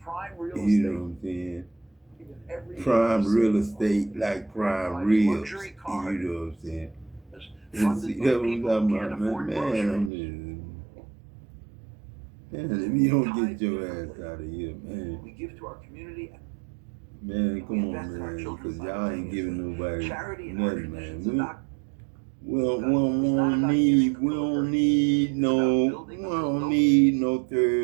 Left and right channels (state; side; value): drops out; left; at 10.1 s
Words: You know what I'm saying? Prime real estate like prime ribs. You know what I'm saying? And see, that's what I'm talking about, man, if you don't get your ass out of here, man. We give to our community. Man, come on, man, because y'all ain't giving nobody nothing, man. We don't need no